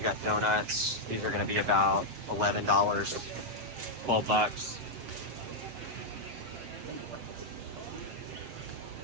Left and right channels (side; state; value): left; late; 7.4 ms